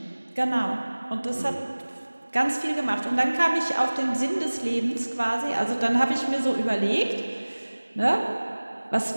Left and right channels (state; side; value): inverted; both; correlation -1.00